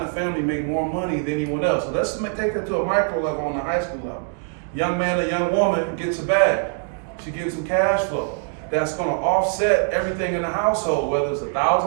the family make more money than anyone else. So let's take that to a micro level on the high school level. Young man or young woman gets a bag. She gets some cash flow. That's gonna offset everything in the household, whether it's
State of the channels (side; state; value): left; silent; digital silence